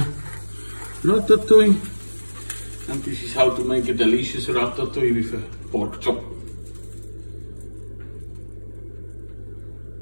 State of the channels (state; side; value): inverted; both; correlation -1.00